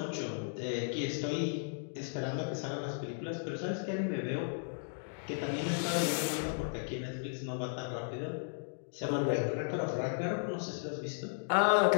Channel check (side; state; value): right; silent; digital silence